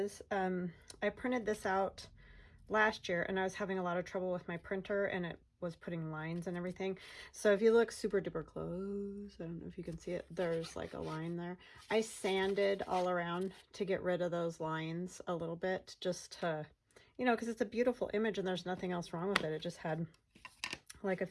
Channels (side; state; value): both; identical; correlation 1.00